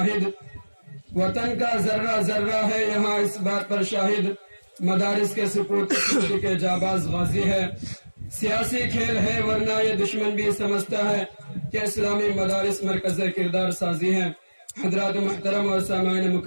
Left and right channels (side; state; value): both; inverted; correlation -1.00